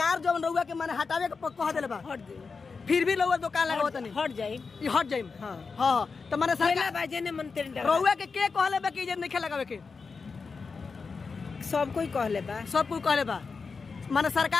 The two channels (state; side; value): quieter; right; 4.8 dB